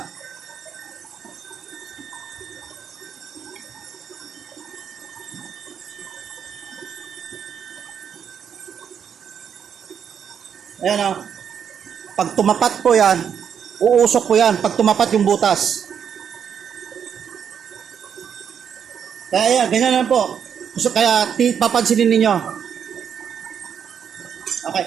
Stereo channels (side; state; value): left; quieter; 7.8 dB